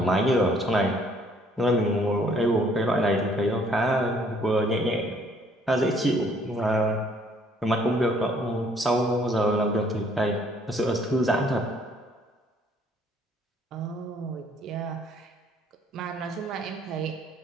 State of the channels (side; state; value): both; normal; correlation 0.62